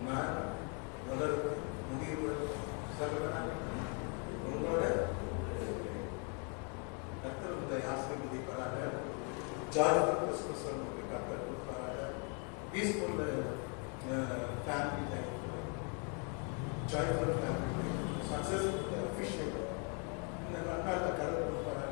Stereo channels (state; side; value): quieter; right; 37.5 dB